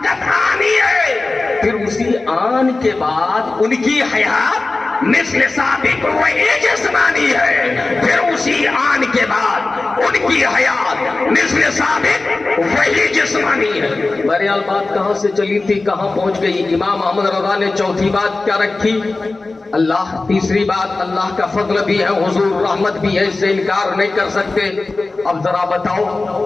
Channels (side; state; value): right; quieter; 3.4 dB